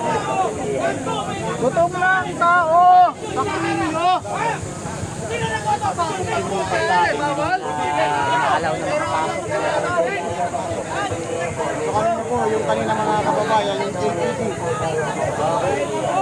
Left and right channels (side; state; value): both; identical; correlation 1.00